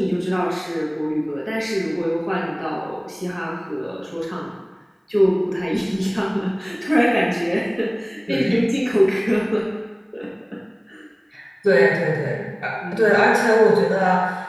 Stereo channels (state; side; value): identical; both; correlation 1.00